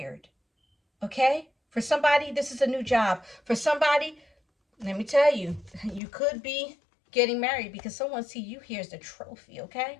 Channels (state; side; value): drops out; right; at 6.0 s